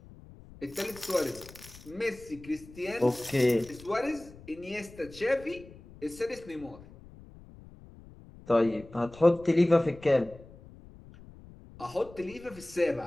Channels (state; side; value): noise; left; rumble, 20 dB below the sound